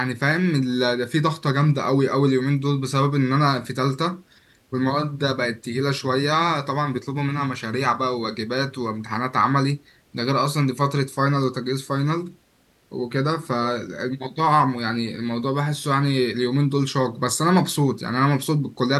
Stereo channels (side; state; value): both; identical; correlation 1.00